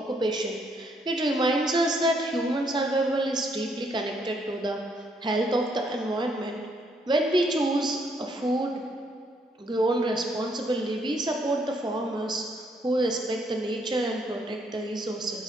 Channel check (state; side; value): normal; both; correlation 0.71